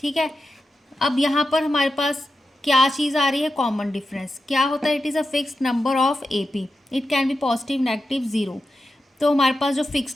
है। अब यहाँ पर हमारे पास क्या चीज़ आ रही है, कॉमन डिफरेंस। क्या होता है, it is a fixed number of AP, it can be positive negative zero. तो हमारे पास जो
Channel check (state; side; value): normal; both; correlation 0.90